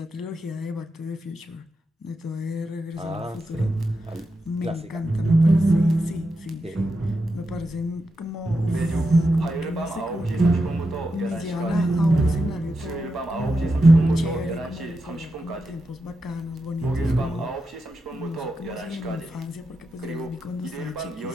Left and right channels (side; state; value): both; normal; correlation 0.87